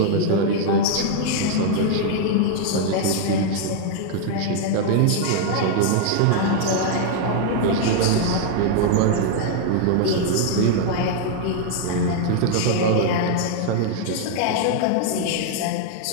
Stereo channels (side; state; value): both; different; correlation 0.00